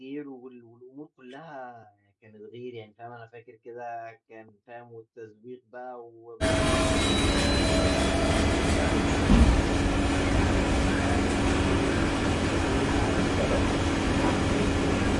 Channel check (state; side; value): identical; both; correlation 1.00